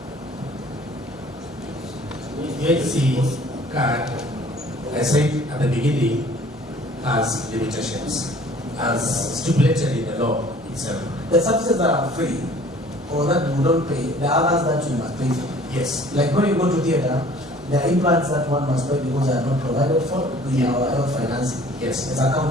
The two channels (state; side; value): normal; both; correlation 0.52